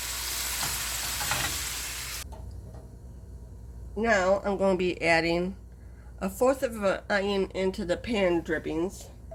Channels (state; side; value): identical; both; correlation 1.00